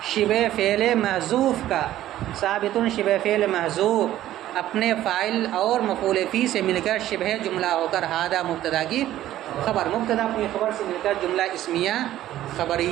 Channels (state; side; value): quieter; left; 13.4 dB